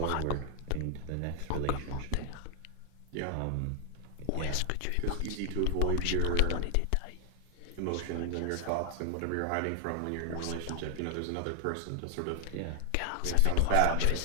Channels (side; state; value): both; different; correlation 0.00